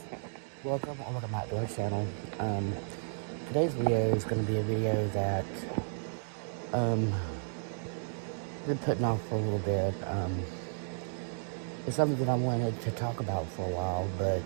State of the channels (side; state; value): left; silent; digital silence